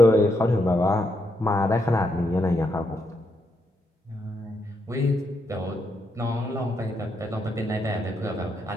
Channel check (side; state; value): both; normal; correlation 0.79